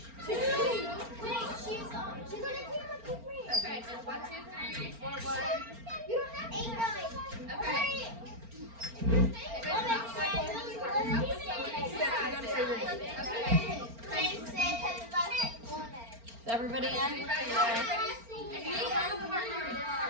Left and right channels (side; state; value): left; late; 4.4 ms